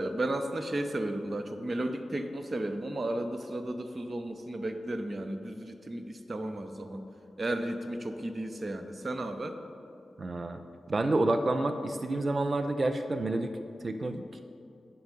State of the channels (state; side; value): normal; both; correlation 0.94